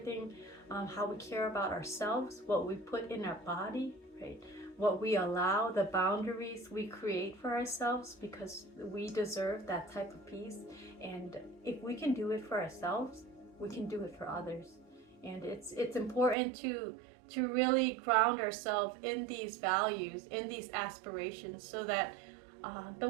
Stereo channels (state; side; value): drops out; left; at 16.4 s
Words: how we care about ourselves, what we put in our body, right? What we allow, the boundaries we create for ourselves, because we deserve that type of peace. And if we can do it for ourselves, we can do it for others. And it's important to really ground ourselves in these values, in these aspirations, so that the